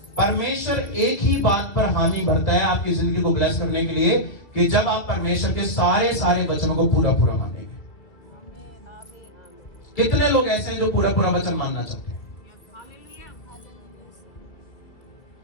परमेश्वर एक ही बात पर हामी भरता है आपकी जिंदगी को ब्लेस करने के लिए, कि जब आप परमेश्वर के सारे वचनों को पूरा पूरा मानेंगे। कितने लोग ऐसे हैं जो पूरा पूरा वचन मानना चाहते हैं?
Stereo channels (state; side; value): late; right; 1.9 ms